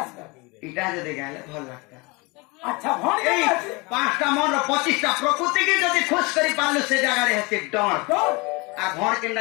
इटा जो देखा भल लगता अच्छा भण 5टा मन 25टा प्रकृति की जदि खुश करी पारलु से जगह रे हेते डण आ भण केनडा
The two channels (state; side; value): quieter; right; 26.6 dB